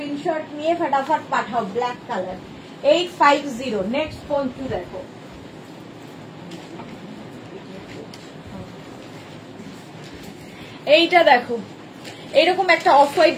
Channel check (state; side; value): identical; both; correlation 1.00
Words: নিয়ে ফটাফট পাঠাও। Black colour 850। নেক্সট পঞ্চু দেখো, এইটা দেখো। এইরকম একটা অফ হোয়াইট